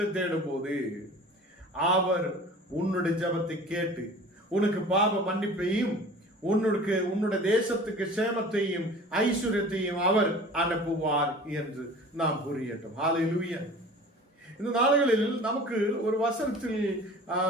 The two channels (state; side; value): normal; both; correlation 0.42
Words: தேடும் போது அவர் உன்னுடைய ஜெபத்தை கேட்டு உனக்கு பாவ மன்னிப்பையும் உன்னுடைய தேசத்துக்கு சேமத்தையும் ஐஸ்வர்யத்தையும் அவர் அனுப்புவார் என்று நாம் புரியட்டும். ஹல்லேலூயா. இந்த நாடுகளில் நமக்கு ஒரு வசனத்தில்